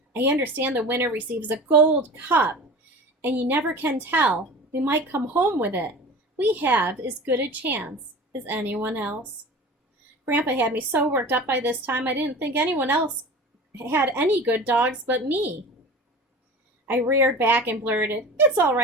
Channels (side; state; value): both; normal; correlation 0.36